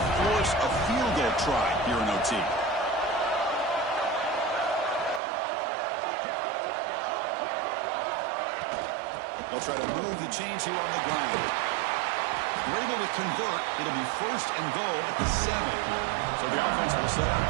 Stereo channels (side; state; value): left; drops out; at 5.2 s